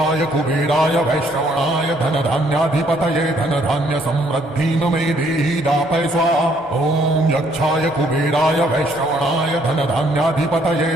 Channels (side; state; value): both; normal; correlation 0.66